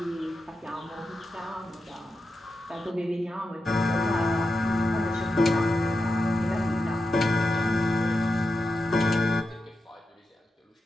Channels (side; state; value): both; normal; correlation 0.89